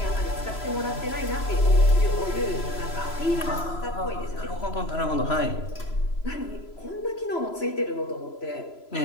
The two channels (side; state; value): right; late; 3.0 ms